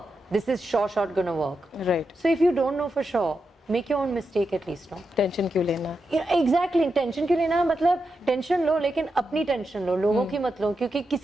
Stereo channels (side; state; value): both; normal; correlation 0.87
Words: this is sure shot going to work. Right. So if you don't know for sure, make your own mistake at least, no? Tension क्यों लेना? Exactly, tension क्यों लेना? मतलब tension लो, लेकिन अपनी tension लो, लोगों की मत लो, क्योंकि